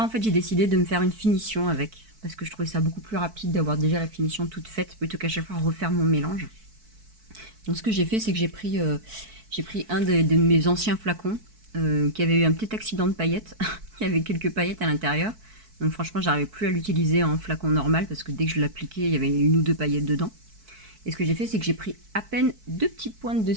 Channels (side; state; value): left; late; 4.6 ms